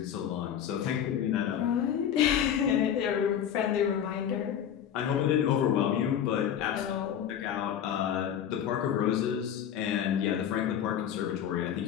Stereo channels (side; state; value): right; quieter; 9.4 dB